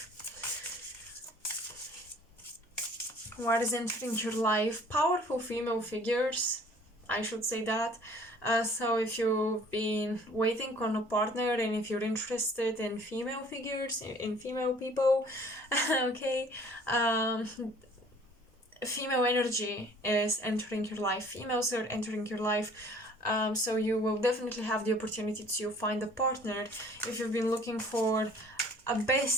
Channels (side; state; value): both; normal; correlation 0.53